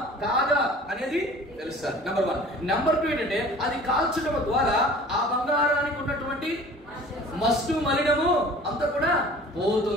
కాదా అనేది తెలుస్తారు. నెంబర్ 1. నెంబర్ 2 ఏంటంటే అది కాల్చడం ద్వారా ఆ బంగారానికి ఉన్నటువంటి మస్టు మలినము అంతా కూడా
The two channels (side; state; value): both; normal; correlation 0.46